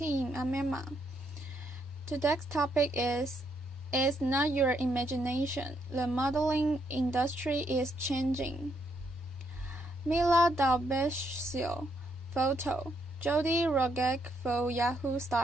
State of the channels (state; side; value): normal; both; correlation 0.75